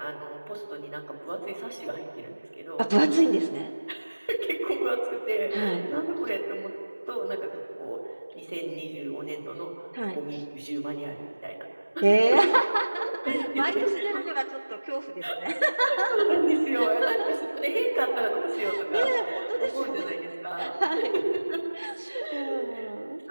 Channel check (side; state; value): both; inverted; correlation -1.00